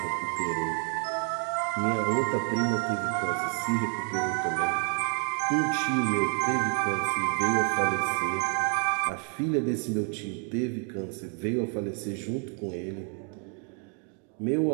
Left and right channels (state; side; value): quieter; left; 38.2 dB